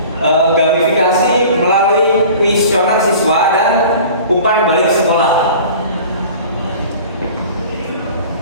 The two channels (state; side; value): inverted; both; correlation -0.42